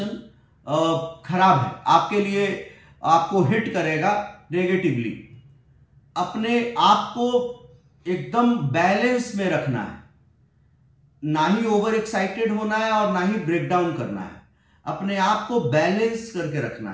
खराब है आपके लिए, आपको हिट करेगा नेगेटिवली. अपने आप को एकदम बैलेंस में रखना है, ना ही ओवर एक्साइटेड होना है और ना ही ब्रेक डाउन करना है. अपने आप को बैलेंस करके रखना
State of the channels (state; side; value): identical; both; correlation 1.00